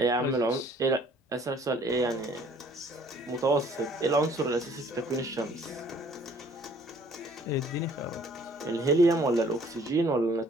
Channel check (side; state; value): both; normal; correlation 0.57